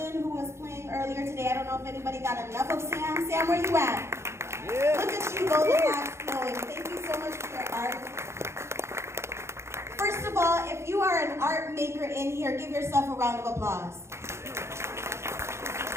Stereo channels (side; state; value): left; late; 0.13 ms